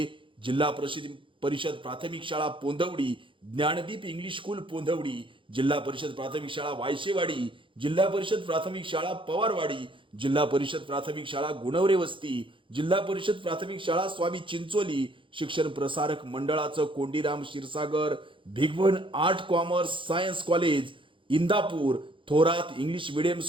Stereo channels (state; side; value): late; left; 0.25 ms